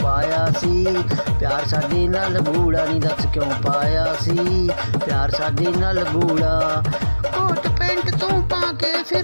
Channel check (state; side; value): inverted; both; correlation -1.00